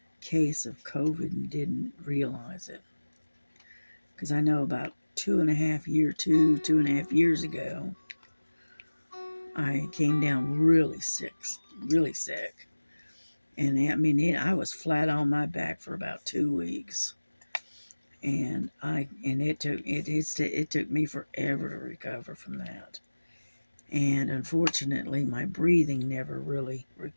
case of COVID and didn't realize it. Because I know about 2.5 years ago, I came down really sick. And I mean, I was flat on my back for about 2 weeks. And it took me forever to recover from that. And unfortunately, my breathing never really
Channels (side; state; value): both; inverted; correlation -1.00